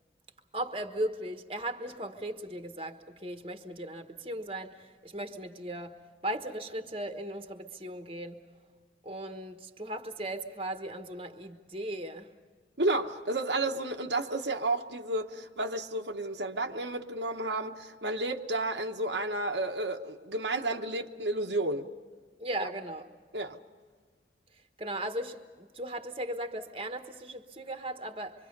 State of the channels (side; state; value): both; normal; correlation -0.02